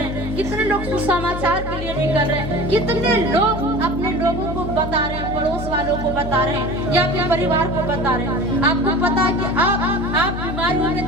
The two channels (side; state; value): left; noise; hum, 7 dB below the sound